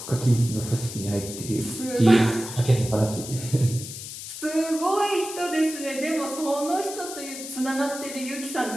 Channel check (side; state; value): left; noise; hiss, 10 dB below the sound